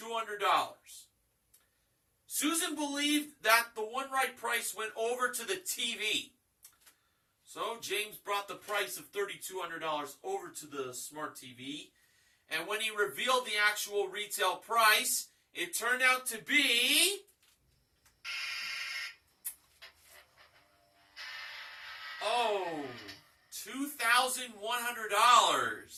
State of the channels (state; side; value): identical; both; correlation 1.00